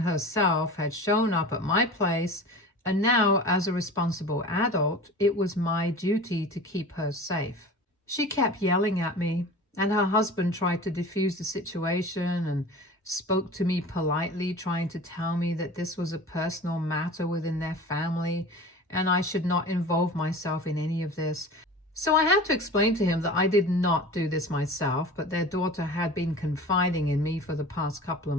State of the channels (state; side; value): normal; both; correlation 0.37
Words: had shown up at my place, and now, as a responsible adult, it was my duty to keep her safe. She kept yelling at me, and her husband tried to defuse the situation and spoke to me politely, trying to tell me that this was a personal matter within their family and I should not involve myself in any of this. So I had to explain to him that I did not do this myself, but their daughter had been confiding in me for the past couple of